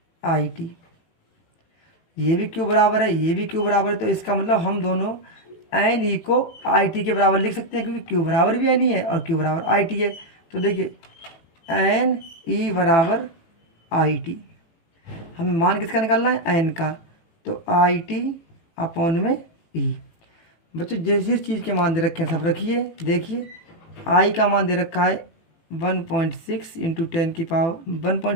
आई टी। ये भी क्यू बराबर है, ये भी क्यू बराबर है, तो इसका मतलब हम दोनों एन ई को आई टी के बराबर लिख सकते हैं, क्योंकि क्यू बराबर भी एन ई है और क्यू बराबर आई टी है। तो देखिए एन ई बराबर आई टी, हमें मान किसका निकालना है एन का, तो आई टी अपॉन में ई। बच्चों जिस जिस चीज़ के मान दे रखे हैं सब रखिए। देखिए आई का मान दे रखा है 1.6 इंटू 10 की पावर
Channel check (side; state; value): right; late; 18 ms